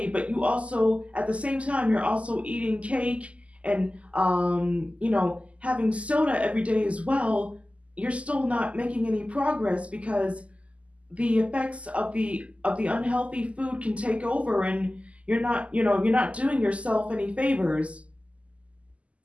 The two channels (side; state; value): left; late; 0.064 ms